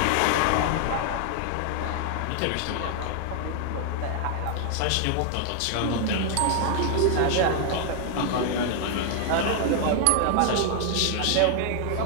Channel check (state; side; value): different; both; correlation 0.00